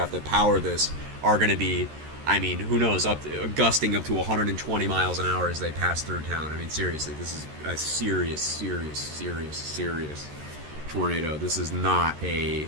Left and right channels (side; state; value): left; late; 13 ms